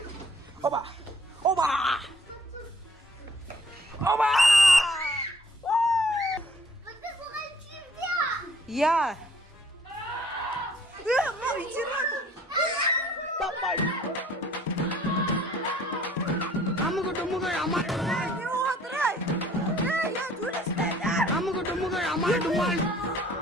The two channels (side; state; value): both; normal; correlation 0.57